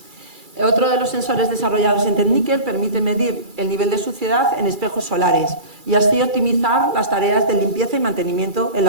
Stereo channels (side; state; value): left; late; 2.3 ms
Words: Otro de los sensores desarrollados en Techniker permite medir el nivel de suciedad en espejos solares y así optimizar las tareas de limpieza y mantenimiento en